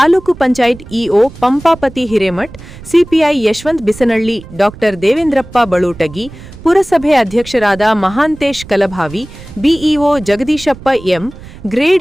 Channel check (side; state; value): right; noise; rumble, 17 dB below the sound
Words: panchayat EO Pampapati Hiremath, CPI Yashwant Bisanalli, Dr Devendrappa Balutagi, ಪುರಸಭೆ ಅಧ್ಯಕ್ಷರಾದ Mahantesh Kalabhavi, BEO Jagadishappa M,